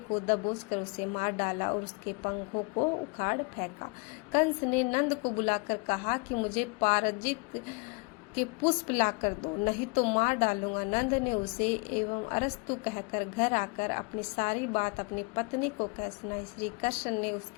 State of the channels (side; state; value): right; quieter; 30.7 dB